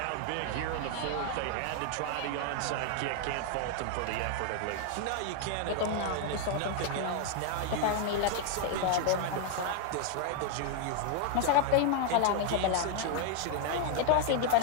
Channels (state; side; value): different; both; correlation 0.00